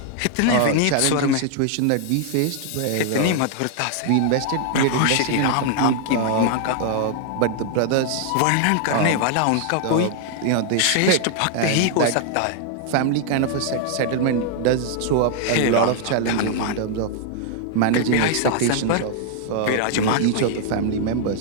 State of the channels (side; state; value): both; different; correlation 0.00